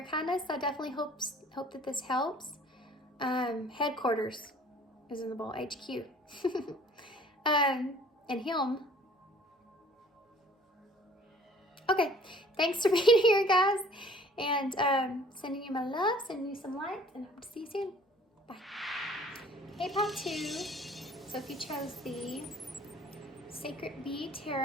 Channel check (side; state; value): both; normal; correlation 0.52